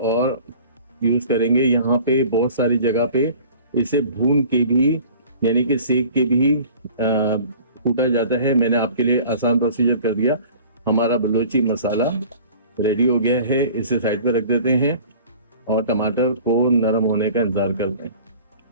यूज करेंगे। यहाँ पे बहुत सारी जगह पे इसे भून के भी यानी कि सेक के भी कूटा जाता है। मैंने आपके लिए आसान प्रोसीजर कर दिया। हमारा बलूची मसाला रेडी हो गया है। इसे साइड पे रख देते हैं और टमाटर को नरम होने का इंतजार करते हैं।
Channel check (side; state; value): both; inverted; correlation -0.46